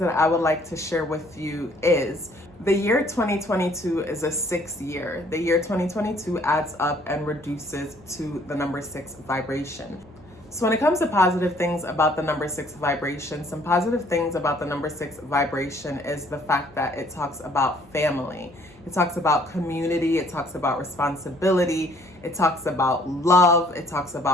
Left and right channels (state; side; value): noise; right; hum, 28 dB below the sound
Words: I would like to share with you is the year 2022 is a 6 year. The year 2022 adds up and reduces to the number 6 vibration. So when it comes to positive things about the number 6 vibration, some positive things about the number 6 vibration is the fact that it talks about family. It talks about community. It talks about responsibility. It talks about love. It talks